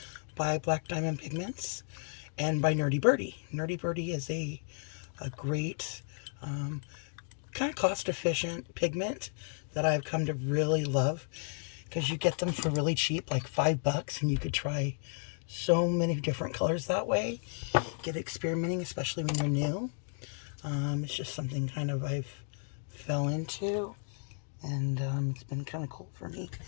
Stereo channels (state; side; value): silent; right; 56 dB below the other